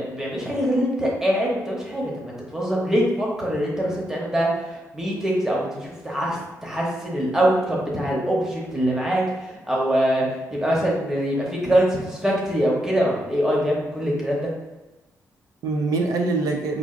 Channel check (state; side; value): normal; both; correlation 0.81